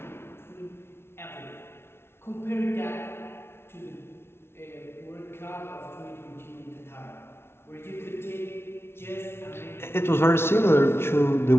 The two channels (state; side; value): late; right; 0.12 ms